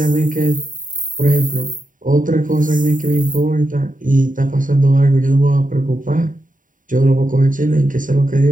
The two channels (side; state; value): left; late; 0.39 ms